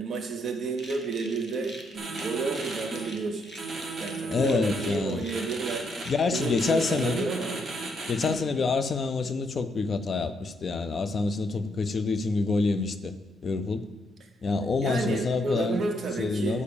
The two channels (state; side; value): normal; both; correlation 0.75